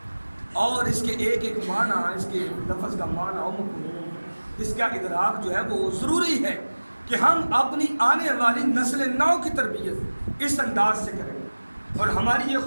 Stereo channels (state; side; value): inverted; both; correlation -1.00